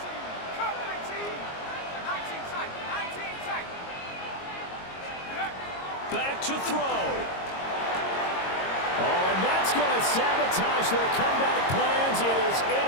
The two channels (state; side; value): late; right; 22 ms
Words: Back to throw. Oh, and that's going to sabotage their comeback plans. It is